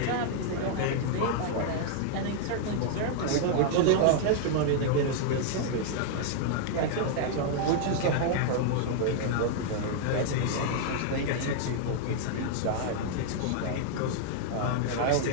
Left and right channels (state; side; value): different; both; correlation -0.01